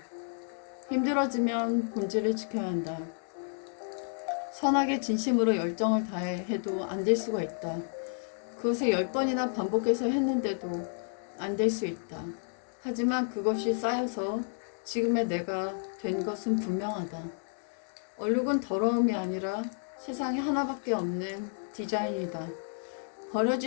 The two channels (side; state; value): right; silent; digital silence